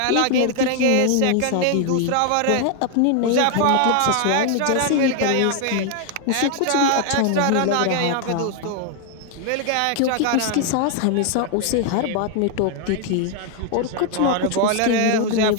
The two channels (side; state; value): both; different; correlation 0.00